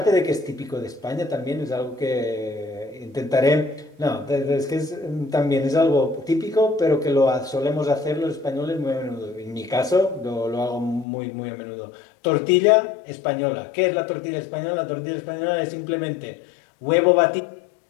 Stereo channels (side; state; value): right; drops out; at 11.1 s